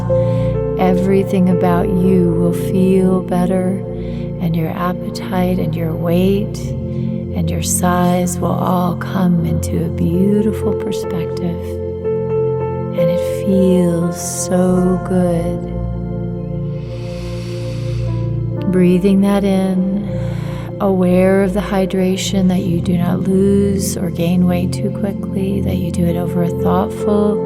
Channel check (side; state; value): both; identical; correlation 1.00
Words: everything about you will feel better, and your appetite and your weight and your size will all come into a beautiful perspective, and it feels so good. Breathing that in, aware of the hydration, that you do not lose or gain weight too quickly, that you do it over a thoughtful,